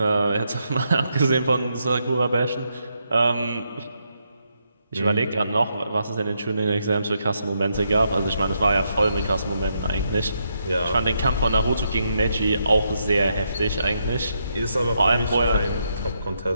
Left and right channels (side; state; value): both; inverted; correlation -0.80